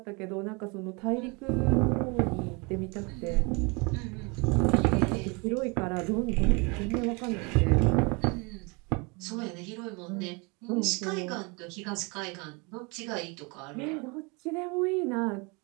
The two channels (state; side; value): quieter; left; 29.7 dB